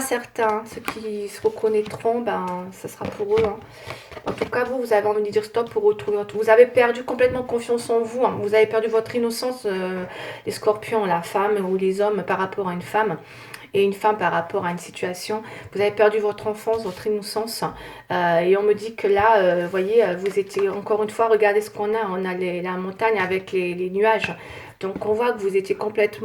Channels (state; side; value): identical; both; correlation 1.00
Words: certains, hein, ceux qui se reconnaîtront, ben, ça sera pour eux, hein. En tout cas, vous avez envie de dire stop pour retrouver votre... Vous avez perdu complètement confiance en vous, hein. Vous avez perdu votre innocence, les scorpions, la femme ou les hommes par rapport à une femme. Et une femme par rapport à une situation. Vous avez perdu votre enfance, votre innocence. Et on me dit que là, vous voyez, vous étiez, encore une fois, regardez ce qu'on a. On a la montagne avec les nuages. Donc on voit que vous étiez